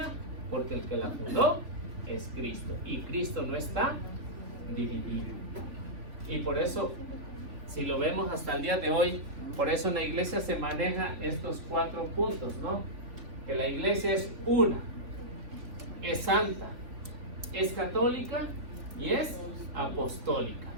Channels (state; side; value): late; left; 3.6 ms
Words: porque el que la fundó es Cristo. Y Cristo no está dividido. Y por eso, si lo vemos hasta el día de hoy, por eso en la iglesia se maneja estos 4 puntos, ¿no? Que la iglesia es una, es santa, es católica y es apostólica.